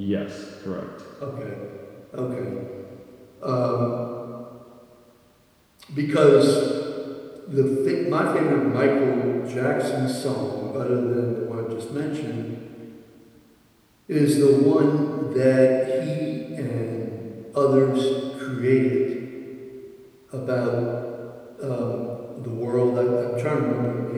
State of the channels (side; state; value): both; identical; correlation 1.00